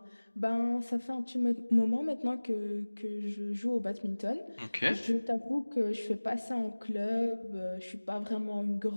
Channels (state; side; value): inverted; both; correlation -1.00